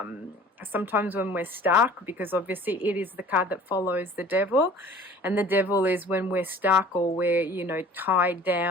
sometimes when we're stuck, because obviously it is the card that follows the devil, and the devil is when we're stuck or we're, you know, tied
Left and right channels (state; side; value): normal; both; correlation 0.47